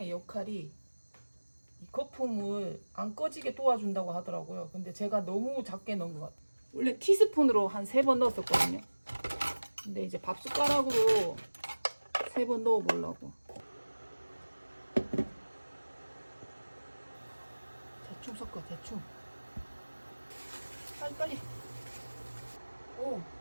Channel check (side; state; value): both; inverted; correlation -1.00